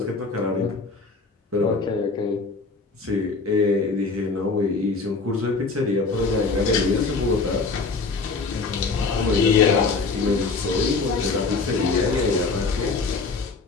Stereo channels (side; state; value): right; quieter; 4.2 dB